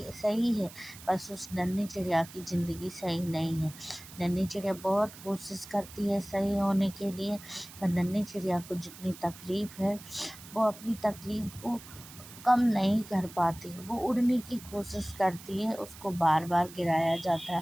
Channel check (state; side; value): noise; right; hiss, 17 dB below the sound